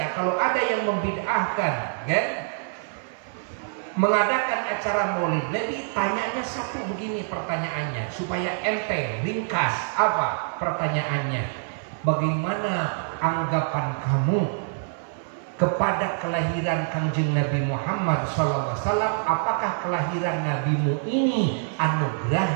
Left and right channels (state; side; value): silent; left; 57 dB below the other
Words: kalau ada yang membid'ahkan, mengadakan acara Maulid Nabi, tanyanya satu begini pertanyaannya, supaya enteng, ringkas. Apa pertanyaannya? Bagaimana anggapan kamu kepada kelahiran Kangjeng Nabi Muhammad SAW? Apakah kelahiran nabimu ini